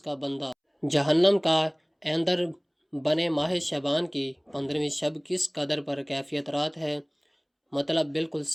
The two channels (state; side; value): identical; both; correlation 1.00